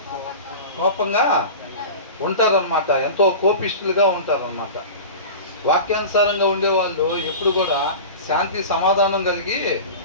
కోపంగా ఉంటారనమాట. ఎంతో కోపిష్ఠులుగా ఉంటారనమాట. వాక్యానుసారంగా ఉండేవాళ్ళు ఎప్పుడు కూడా శాంతి సమాధానం కలిగి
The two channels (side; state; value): both; inverted; correlation -0.33